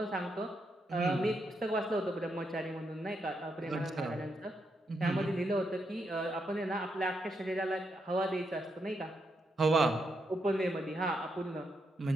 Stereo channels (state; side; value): normal; both; correlation 0.81